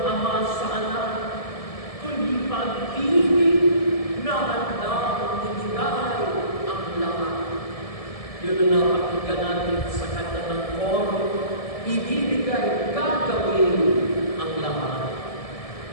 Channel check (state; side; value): late; right; 1.7 ms